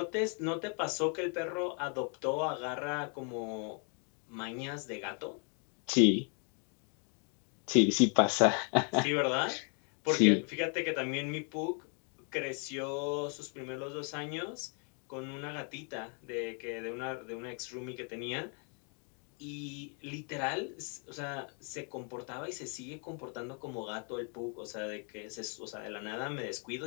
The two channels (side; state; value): right; quieter; 40.0 dB